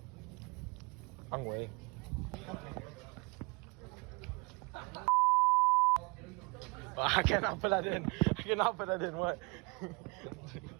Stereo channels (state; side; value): quieter; left; 29.6 dB